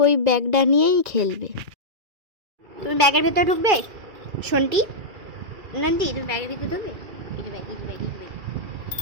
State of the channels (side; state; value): left; late; 2.4 ms